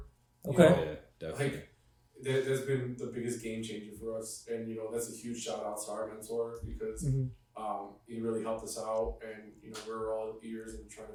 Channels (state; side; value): identical; both; correlation 1.00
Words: Okay. Yeah, definitely. Like, that's been the biggest game changer for us, and you know that's a huge shout out to our mentor because he really helped us out, and you know we're all ears and trying to